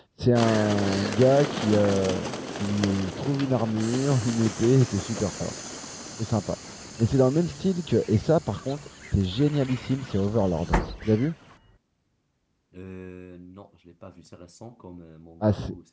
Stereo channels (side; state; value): both; identical; correlation 1.00